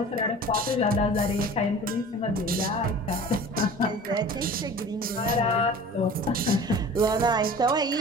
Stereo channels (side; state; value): both; normal; correlation 0.41